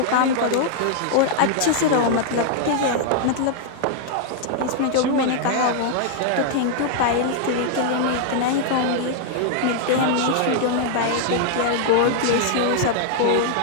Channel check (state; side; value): different; both; correlation -0.01